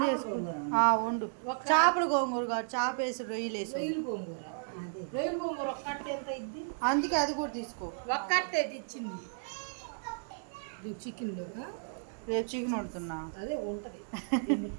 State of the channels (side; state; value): left; silent; digital silence